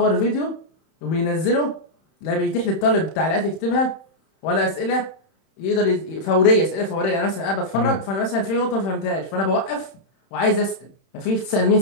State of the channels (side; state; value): right; late; 31 ms